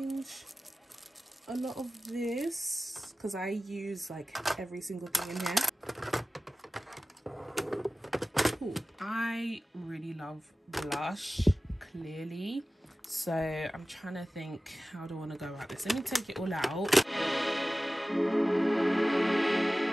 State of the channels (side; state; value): both; normal; correlation 0.96